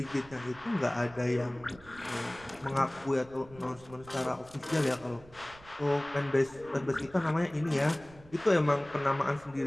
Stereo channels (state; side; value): noise; right; rumble, 22 dB below the sound